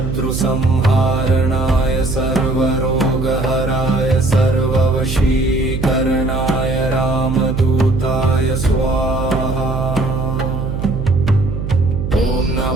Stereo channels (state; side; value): noise; right; hum, 4 dB below the sound